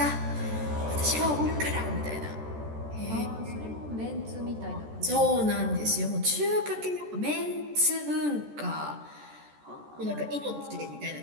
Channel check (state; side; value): late; left; 14 ms